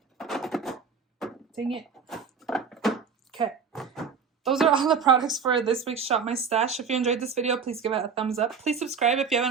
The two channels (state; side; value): quieter; left; 5.9 dB